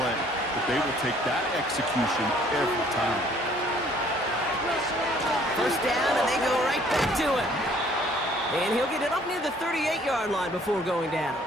But they will take that execution every time. 1st down, and they go right back to him. And he'll get it up near the 38-yard line before going down.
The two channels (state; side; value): normal; both; correlation 0.59